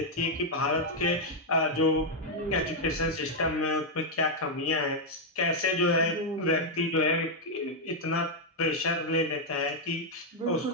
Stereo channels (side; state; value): both; normal; correlation -0.01